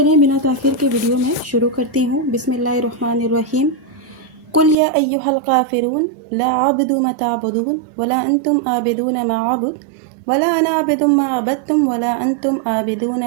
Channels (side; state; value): left; drops out; at 4.8 s